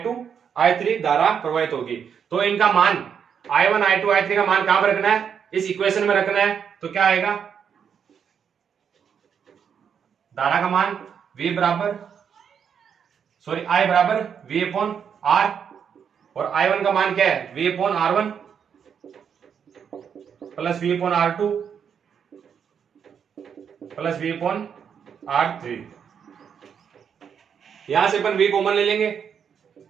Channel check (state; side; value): quieter; left; 7.5 dB